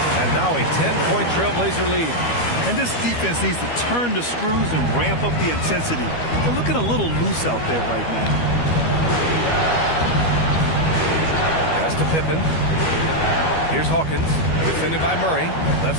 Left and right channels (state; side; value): late; right; 12 ms